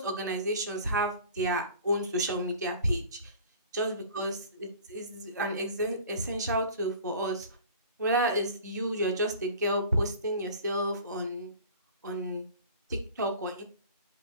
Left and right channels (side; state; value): both; inverted; correlation -0.43